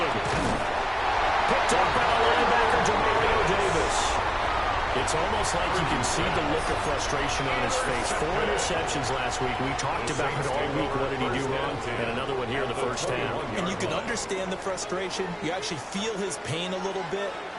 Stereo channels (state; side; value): identical; both; correlation 1.00